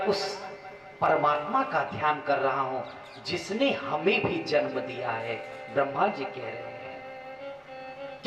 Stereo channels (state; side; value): identical; both; correlation 1.00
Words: उस परमात्मा का ध्यान कर रहा हूं जिसने हमें भी जन्म दिया है। ब्रह्मा जी कह रहे हैं,